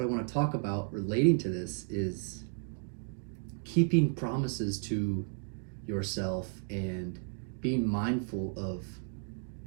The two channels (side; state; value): left; silent; 55 dB below the other